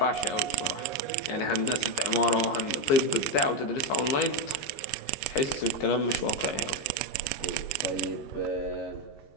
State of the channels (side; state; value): right; late; 15 ms